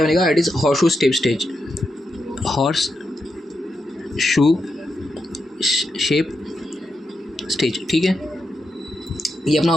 बनेगा, that is horse shoe shape stage, ठीक है। ये अपना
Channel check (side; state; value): both; normal; correlation 0.85